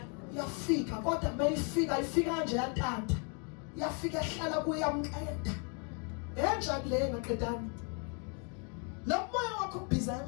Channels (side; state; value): right; quieter; 37.7 dB